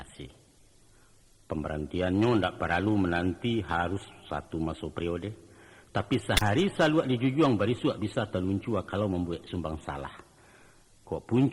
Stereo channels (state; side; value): identical; both; correlation 1.00